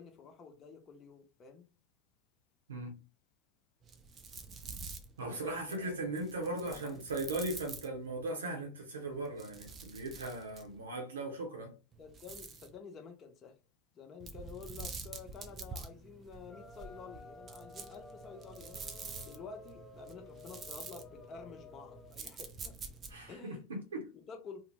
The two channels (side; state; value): both; normal; correlation -0.09